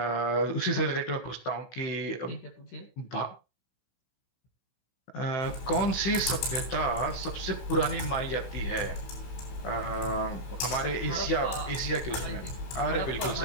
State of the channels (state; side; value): late; right; 16 ms